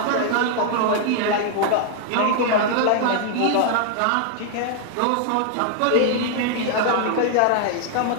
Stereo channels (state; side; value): different; both; correlation 0.00